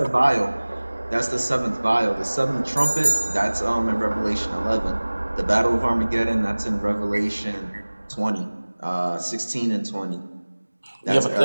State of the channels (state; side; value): inverted; both; correlation -1.00